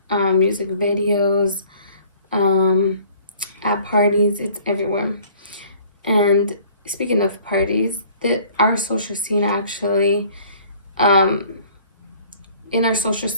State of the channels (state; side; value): inverted; both; correlation -0.53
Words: music videos, at parties, it's everywhere. And speaking of parties, our social scene actually, in our social